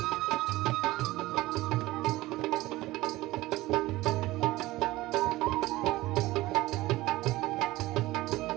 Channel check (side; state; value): left; quieter; 18.4 dB